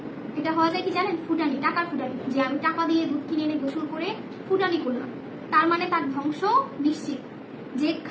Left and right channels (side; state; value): both; identical; correlation 1.00